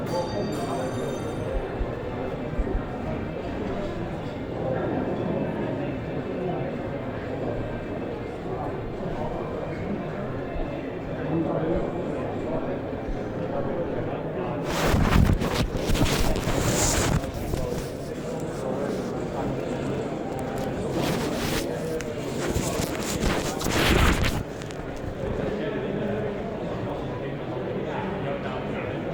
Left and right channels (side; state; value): both; identical; correlation 1.00